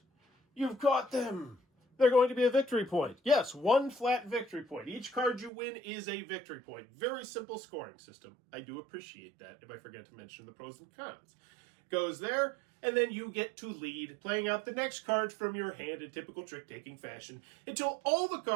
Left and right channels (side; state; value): left; drops out; at 5.5 s